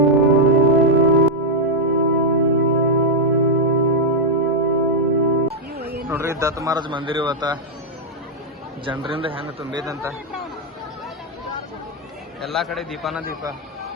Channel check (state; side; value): normal; both; correlation -0.01